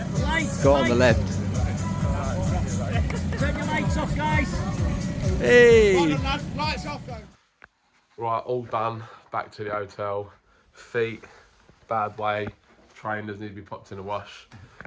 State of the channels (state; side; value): identical; both; correlation 1.00